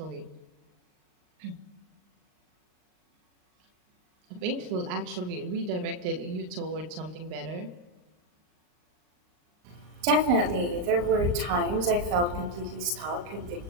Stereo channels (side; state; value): left; late; 39 ms